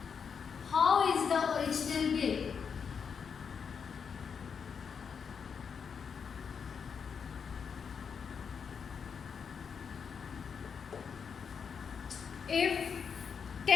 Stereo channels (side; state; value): right; quieter; 6.5 dB